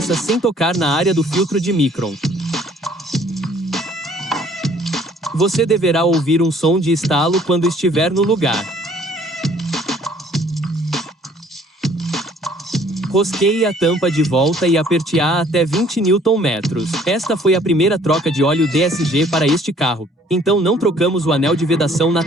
sem tocar na área do filtro de micron. Você deverá ouvir um som de estalo quando estiver no lugar. Rosqueie a tampa de volta e aperte-a até 20 Nm. Esta foi a primeira troca de óleo DSG para este carro, então não trocamos o anel de vedação na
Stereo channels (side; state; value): both; normal; correlation 0.58